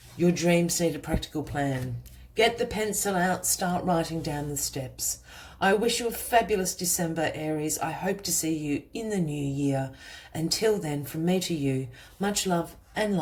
Your dreams need a practical plan. Get the pencil out, start writing down the steps. I wish you a fabulous December, Aries. I hope to see you in the new year. Until then, from me to you, much love and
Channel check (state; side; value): identical; both; correlation 1.00